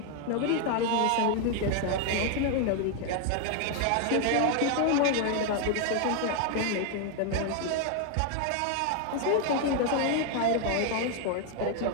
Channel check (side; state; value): both; different; correlation 0.01